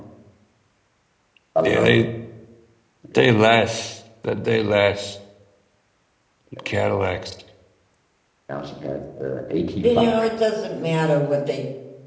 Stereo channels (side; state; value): both; identical; correlation 1.00